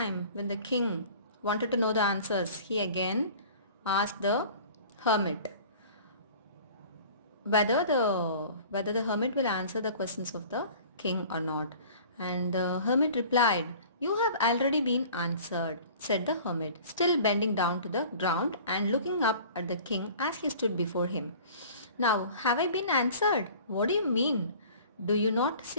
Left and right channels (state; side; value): inverted; both; correlation -0.45